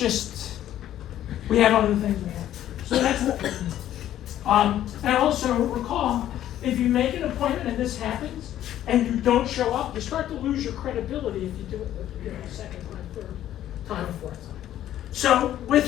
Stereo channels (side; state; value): right; quieter; 12.1 dB